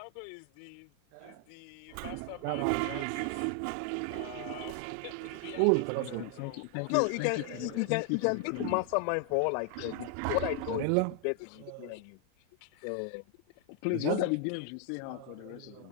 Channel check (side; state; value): both; different; correlation 0.00